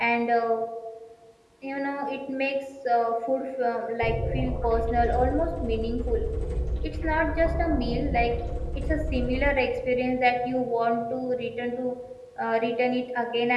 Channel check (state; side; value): identical; both; correlation 1.00